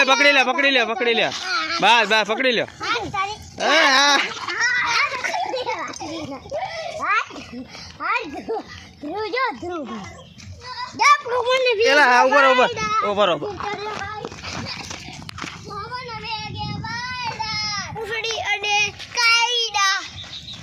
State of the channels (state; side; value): identical; both; correlation 1.00